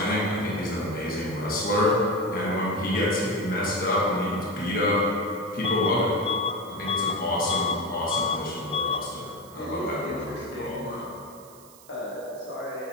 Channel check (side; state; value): right; noise; hiss, 22 dB below the sound